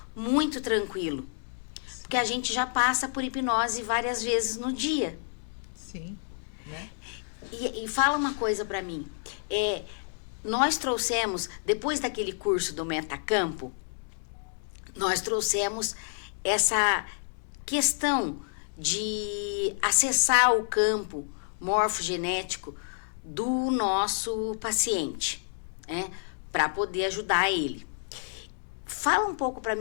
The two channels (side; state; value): right; silent; digital silence